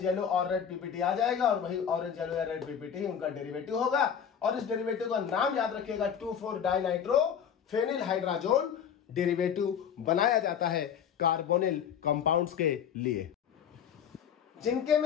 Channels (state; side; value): quieter; right; 8.1 dB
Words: येलो और रेड पीपीटी आ जाएगा और वही ऑरेंज येलो या रेड पीपीटी उनका डेरिवेटिव होगा। और इस डेरिवेटिव का नाम याद रखिएगा 2,4-डाइनाइट्रोफेनिल हाइड्राजोन डेरिवेटिव बनाया जाता है कार्बोनिल कंपाउंड्स के लिए।